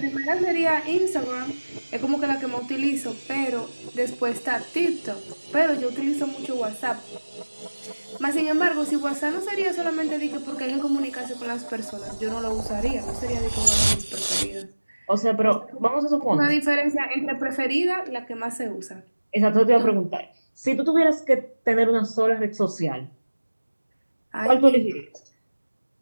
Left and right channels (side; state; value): both; inverted; correlation -1.00